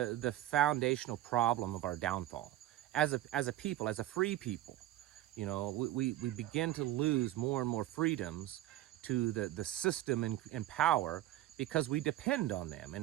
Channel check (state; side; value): quieter; left; 14.1 dB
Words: foundational problem of our downfall. As a people, as a free people, we begin to lose more and more freedoms to the system and power because we depend on them.